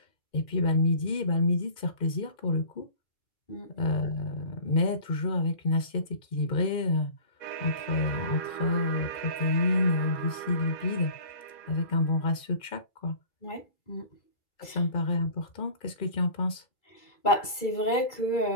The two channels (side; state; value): right; late; 2.4 ms